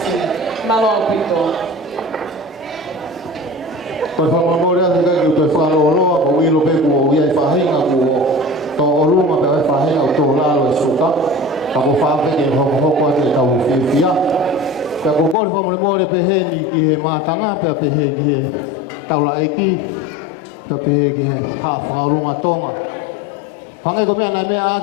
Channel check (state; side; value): drops out; right; at 15.4 s